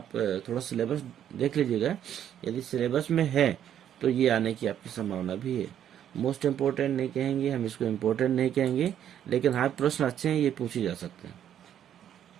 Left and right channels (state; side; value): quieter; left; 10.1 dB